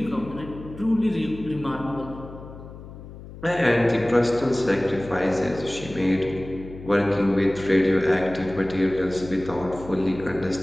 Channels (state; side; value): noise; left; hum, 15 dB below the sound